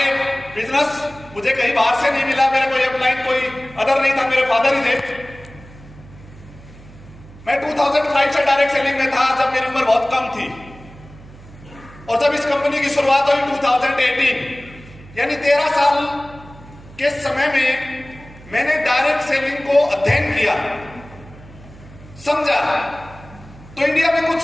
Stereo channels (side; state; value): right; noise; hum, 20 dB below the sound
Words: बिजनेस मुझे कहीं बाहर से नहीं मिला, मेरा कोई अपलाइन कोई अदर नहीं था, मेरे फादर ही थे। मैं 2005 से डायरेक्ट सेलिंग में था जब मेरी उम्र बहुत कम थी, और जब इस कंपनी की शुरुआत हुई 2018, यानी 13 साल के समय में मैंने डायरेक्ट सेलिंग को अध्ययन किया, समझा, तो इंडिया में कुछ